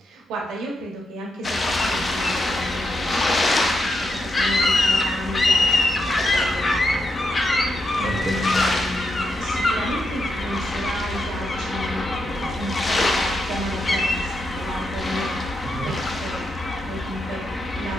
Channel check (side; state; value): both; normal; correlation 0.84